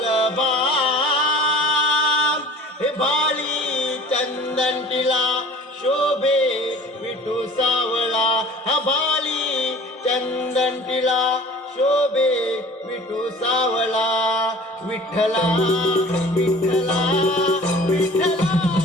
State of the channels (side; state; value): both; normal; correlation 0.46